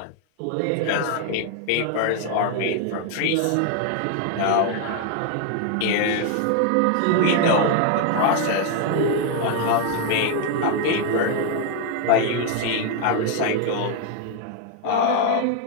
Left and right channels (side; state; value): both; different; correlation 0.00